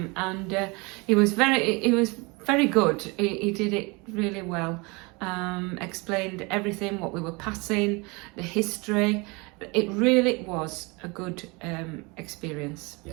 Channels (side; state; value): left; quieter; 27.6 dB